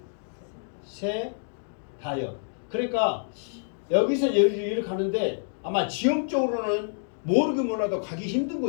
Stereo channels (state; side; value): silent; right; digital silence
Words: 벳세다요. 그러니까 여기서 여기로 가는데 아마 지형적으로는 모르긴 몰라도 가기 힘든